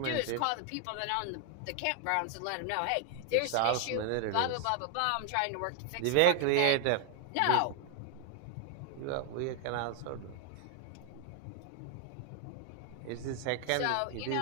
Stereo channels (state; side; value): different; both; correlation 0.00